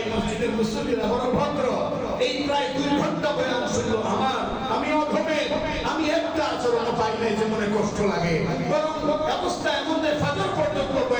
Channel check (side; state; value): both; identical; correlation 1.00